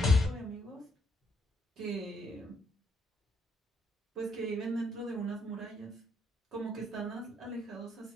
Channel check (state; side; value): normal; both; correlation 0.73